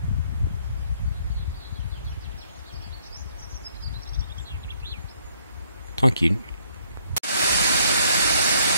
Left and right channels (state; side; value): inverted; both; correlation -0.66